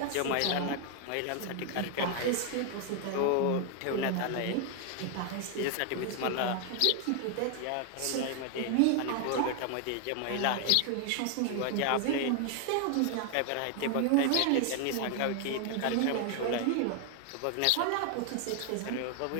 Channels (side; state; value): both; different; correlation 0.00